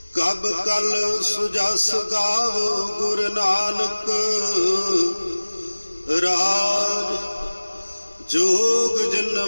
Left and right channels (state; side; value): inverted; both; correlation -1.00